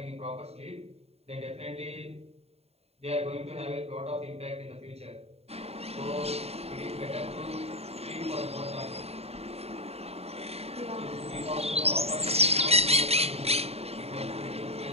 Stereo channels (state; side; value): late; left; 0.30 ms